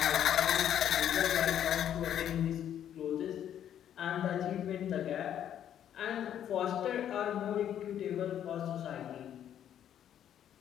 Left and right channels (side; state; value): right; quieter; 10.2 dB